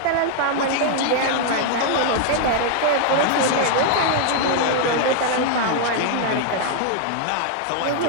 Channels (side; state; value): both; different; correlation 0.00